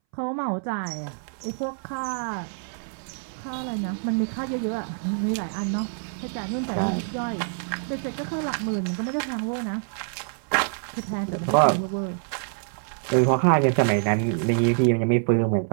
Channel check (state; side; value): silent; left; 61 dB below the other